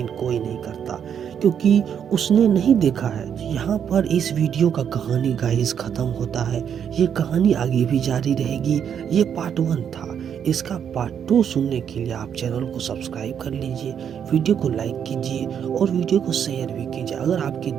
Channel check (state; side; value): quieter; left; 8.3 dB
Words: कोई नहीं करता, क्योंकि उसने नहीं देखा है। यहाँ पर इस वीडियो का कहानी गाइस खत्म होता है। ये कहानी आगे भी जारी रहेगी। ये पार्ट 1 था। इसका पार्ट 2 सुनने के लिए आप चैनल को सब्सक्राइब कर लीजिए, वीडियो को लाइक कीजिए और वीडियो को शेयर भी कीजिए। अगर आपके